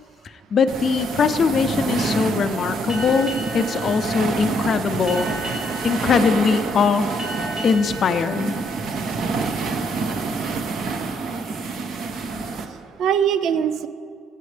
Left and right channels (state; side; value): normal; both; correlation 0.71